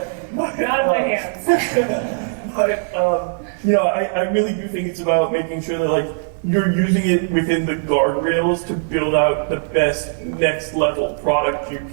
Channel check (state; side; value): silent; left; digital silence